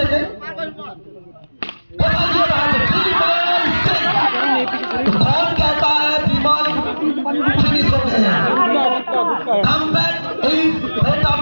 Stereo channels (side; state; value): both; inverted; correlation -1.00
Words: कौन कहता है विमल फिनिश हो गए हैं, comeback is better